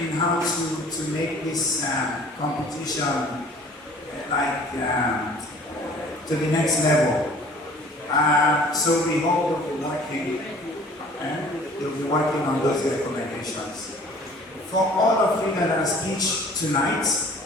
how to make this competition to the next level. So we hope they'll be working on those recommendations. For all of you that are speech tonight,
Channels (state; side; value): normal; both; correlation 0.50